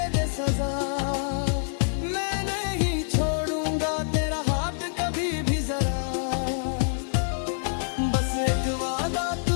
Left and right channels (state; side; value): silent; right; digital silence